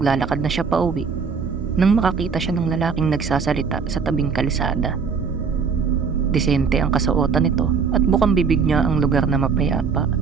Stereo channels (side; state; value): left; quieter; 5.7 dB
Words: na siya pauwi nang makakita siya ng lalaking nagsasalita sa tabing kalsada. Disente ang kasuotan nito at bukang bibig niya ang lugar na mapayapa.